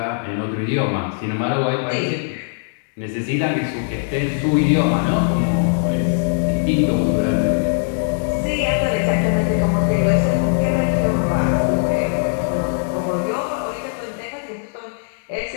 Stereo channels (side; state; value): right; silent; 66 dB below the other